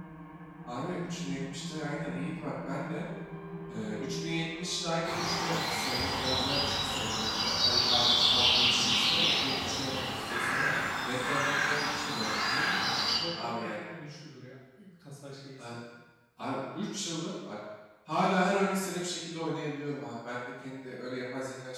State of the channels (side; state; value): both; identical; correlation 1.00